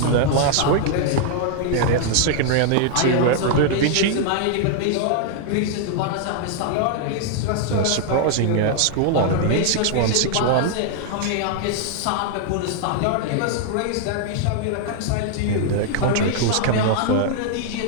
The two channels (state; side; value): different; both; correlation 0.00